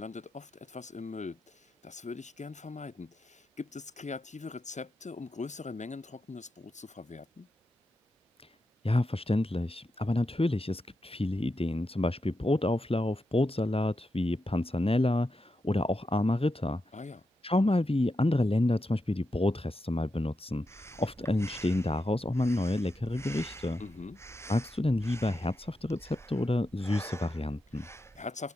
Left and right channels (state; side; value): normal; both; correlation 0.87